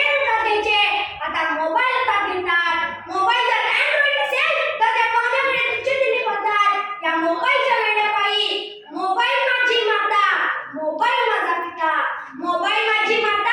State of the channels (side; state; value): both; identical; correlation 1.00